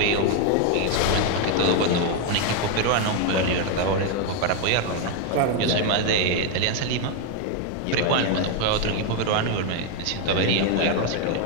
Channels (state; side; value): different; both; correlation 0.01